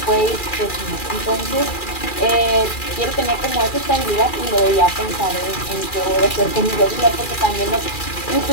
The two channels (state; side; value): late; right; 2.4 ms